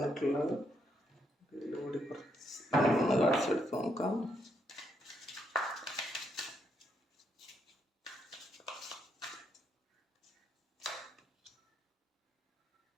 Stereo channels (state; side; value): normal; both; correlation 0.76